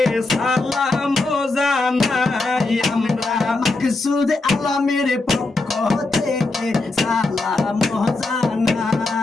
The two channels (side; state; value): right; quieter; 3.3 dB